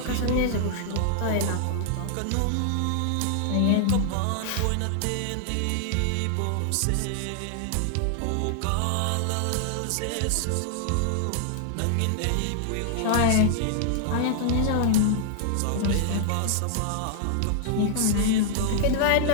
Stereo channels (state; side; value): different; both; correlation 0.00